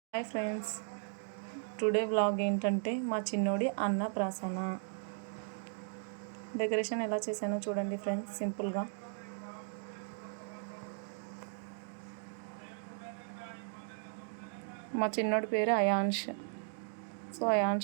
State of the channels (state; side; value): silent; left; digital silence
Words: Hi friends, today vlog ఏంటంటే మా చిన్నోడి అన్నప్రాసన డెకరేషన్ ఎలా చేశానో చూడండి ఫ్రెండ్స్. సింపుల్గా మా చిన్నోడి పేరు అయాన్ష్. సో